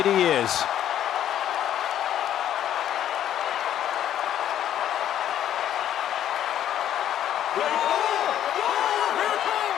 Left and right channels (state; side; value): quieter; right; 11.0 dB